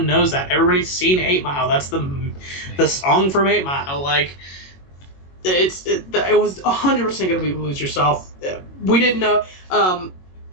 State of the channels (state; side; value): late; right; 22 ms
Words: knows that. Everybody's seen 8 Mile. That's the song from 8 Mile. Like, it was 100% going to be Lose Yourself. We didn't know.